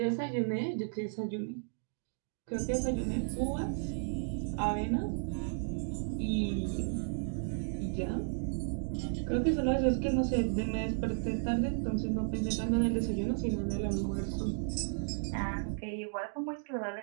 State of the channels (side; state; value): left; silent; digital silence